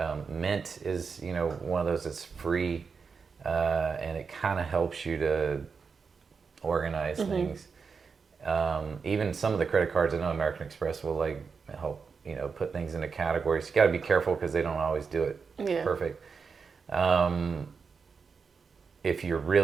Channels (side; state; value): left; quieter; 5.5 dB